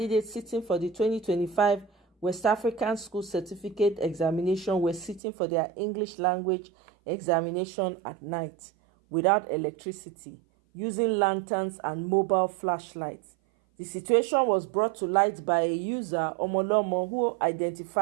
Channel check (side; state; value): left; drops out; at 5.2 s